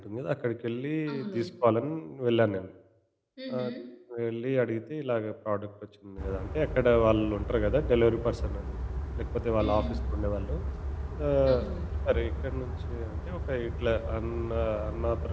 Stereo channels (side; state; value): both; identical; correlation 1.00